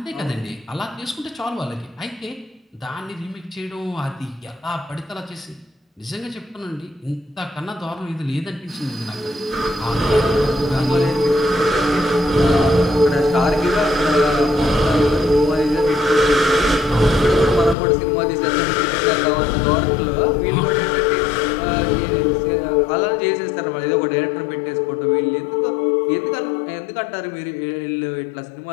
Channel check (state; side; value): drops out; right; at 17.8 s